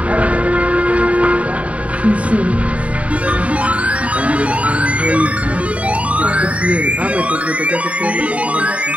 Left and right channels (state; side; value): late; left; 0.066 ms